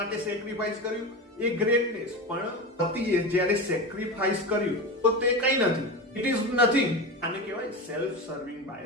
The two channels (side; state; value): both; normal; correlation 0.23